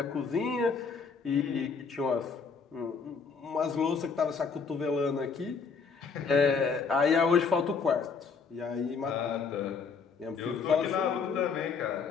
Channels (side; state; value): right; quieter; 5.3 dB